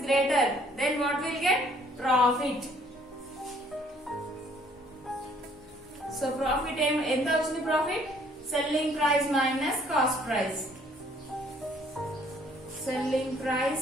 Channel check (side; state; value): both; normal; correlation 0.61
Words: greater, then what will get? Profit. So profit ఎంత వచ్చింది? Profit selling price minus cost price. selling